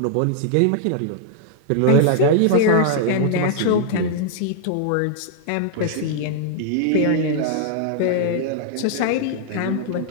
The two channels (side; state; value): both; different; correlation -0.01